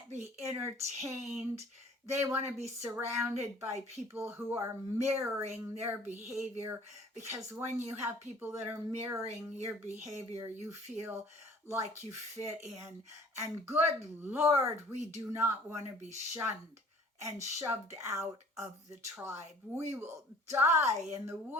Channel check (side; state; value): both; normal; correlation 0.52